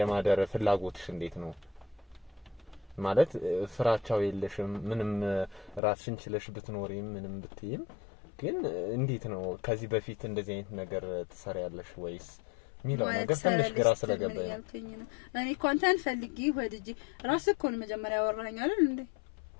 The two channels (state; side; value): drops out; right; at 5.8 s